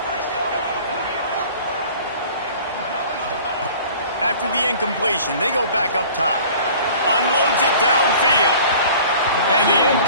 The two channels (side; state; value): both; inverted; correlation -0.46